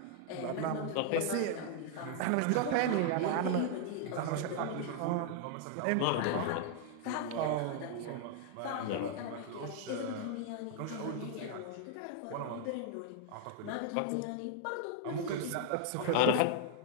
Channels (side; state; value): both; different; correlation 0.00